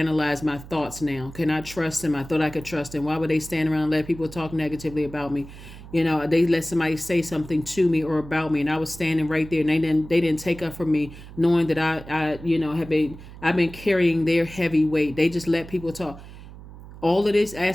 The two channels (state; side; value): noise; right; hum, 16 dB below the sound